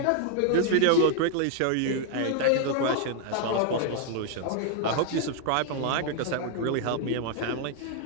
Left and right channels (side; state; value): both; different; correlation 0.00